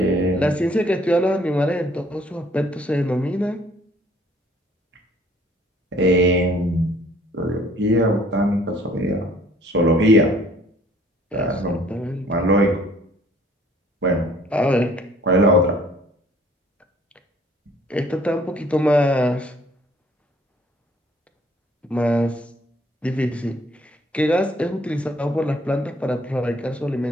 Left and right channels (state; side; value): normal; both; correlation 0.58